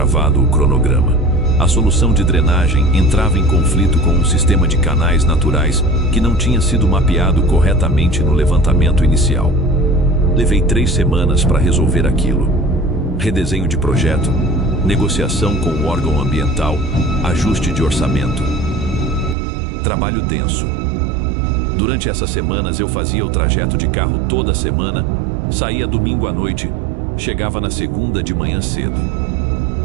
o cronograma. A solução de drenagem entrava em conflito com um sistema de canais naturais que não tinha sido mapeado corretamente no levantamento inicial. Levei 3 semanas para resolver aquilo. Redesenho de projeto, negociação com o órgão ambiental, ajuste de orçamento. Trabalho denso. Durante essas semanas eu fazia o trajeto de carro toda semana, saía domingo à noite, chegava na segunda de manhã cedo.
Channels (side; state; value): left; drops out; at 19.4 s